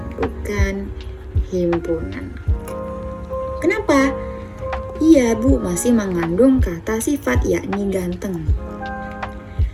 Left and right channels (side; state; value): both; identical; correlation 1.00